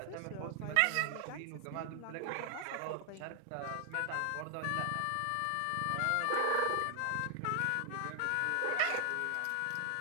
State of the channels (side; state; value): both; different; correlation 0.00